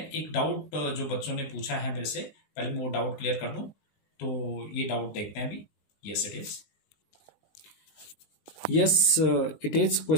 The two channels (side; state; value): right; late; 19 ms